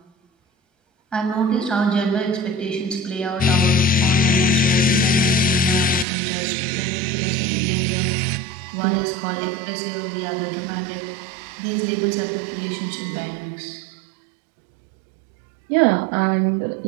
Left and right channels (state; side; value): drops out; left; at 6.1 s